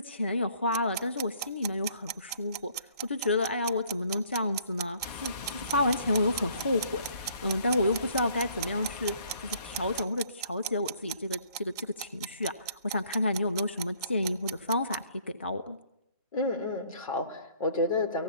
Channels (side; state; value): both; inverted; correlation -0.60